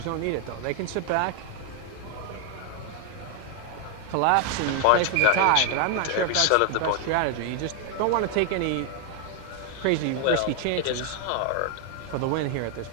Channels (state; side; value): different; both; correlation 0.00